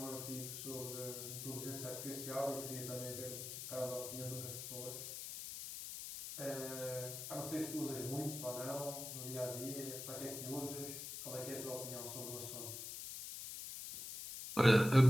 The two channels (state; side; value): noise; left; hiss, 7 dB below the sound